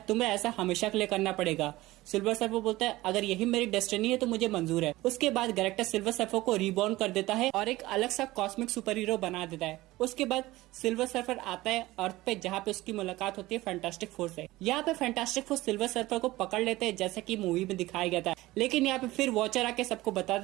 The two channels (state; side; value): quieter; left; 18.3 dB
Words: तुम्हें ऐसा हमेशा के लिए करना पड़ेगा। सिल्वर सर्फर बोलता है अगर यही मेरी डेस्टिनी है तो मुझे मंजूर है। उसके बाद गैलेक्टस सिल्वर सर्फर को रीबॉर्न कर देता है और एक अलग सा कॉस्मिक सुपर हीरो बना देता है। उसके बाद सिल्वर सर्फर आता है अर्थ पे, जहाँ पे उसकी मुलाकात होती है फैंटास्टिक फोर से। यहाँ पे फैंटास्टिक फोर सिल्वर सर्फर को पकड़ लेते हैं, जैसा कि मूवी में दिखाया गया था। लेकिन यहाँ पे फिर वॉचर आके सबको बता